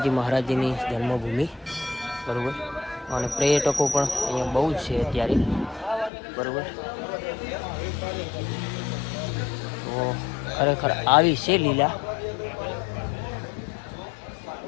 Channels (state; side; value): drops out; right; at 6.1 s